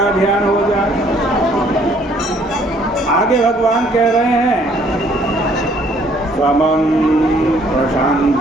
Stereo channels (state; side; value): normal; both; correlation 0.62